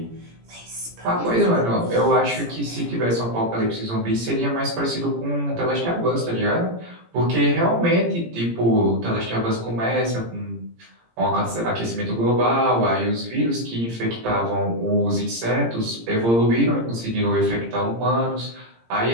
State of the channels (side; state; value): left; late; 17 ms